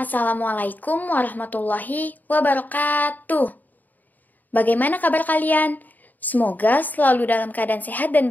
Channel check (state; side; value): late; right; 0.084 ms